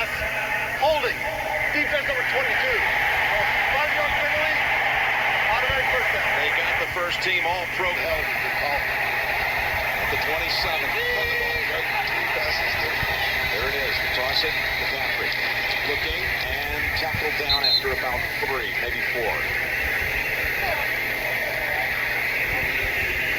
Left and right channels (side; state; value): both; identical; correlation 1.00